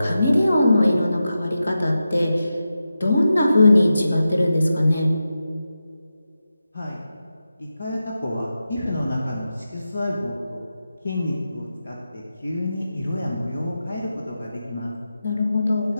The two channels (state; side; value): inverted; both; correlation -0.90